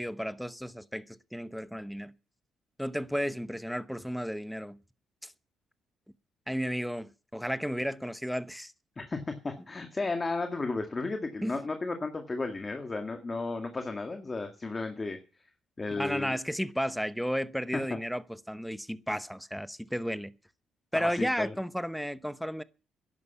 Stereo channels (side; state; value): both; normal; correlation 0.97